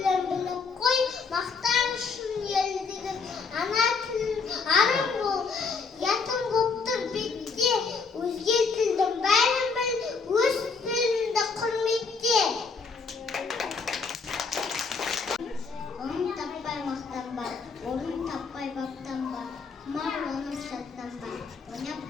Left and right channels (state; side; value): quieter; right; 4.9 dB